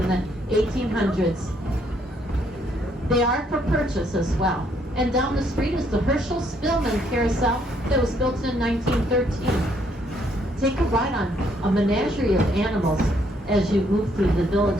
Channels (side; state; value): both; normal; correlation 0.69